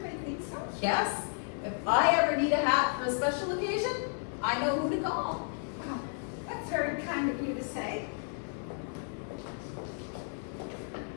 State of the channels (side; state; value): right; silent; 56 dB below the other